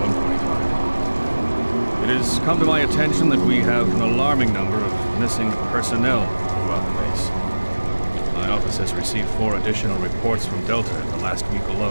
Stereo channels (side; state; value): both; inverted; correlation -1.00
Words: It has come to my attention that we have an alarming number of missing personnel throughout the base. My office has received 4 additional reports from Delta in the last week